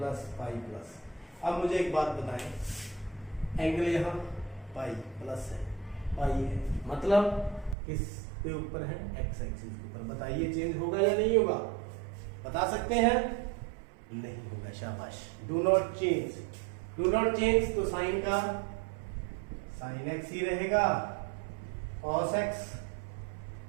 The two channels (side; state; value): left; drops out; at 7.8 s